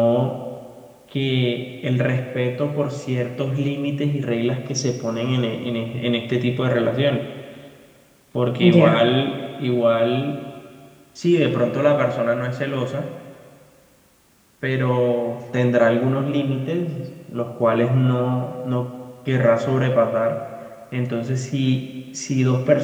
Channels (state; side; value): identical; both; correlation 1.00